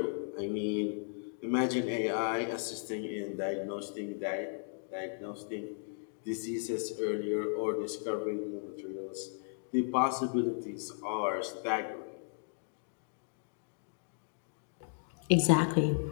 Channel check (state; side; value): silent; right; digital silence